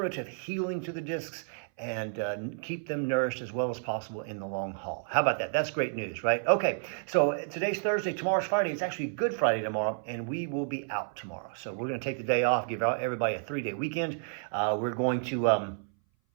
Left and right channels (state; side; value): silent; left; 57 dB below the other